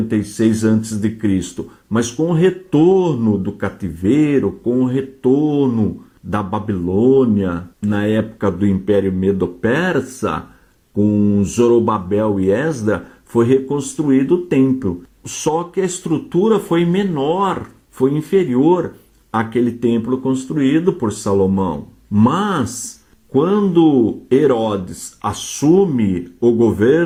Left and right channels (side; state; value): both; identical; correlation 1.00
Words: a.C. Mas com o retorno do cativeiro, com o retorno da Babilônia, na época do Império Medo-Persa, com Zorobabel e Esdra, foi reconstruído o templo. Só que a estrutura foi menor, foi inferior àquele templo construído por Salomão. Mas, quando Herodes assume o